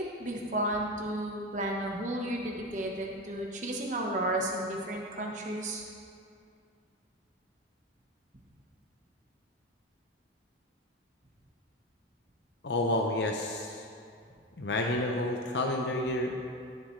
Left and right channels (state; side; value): normal; both; correlation 0.20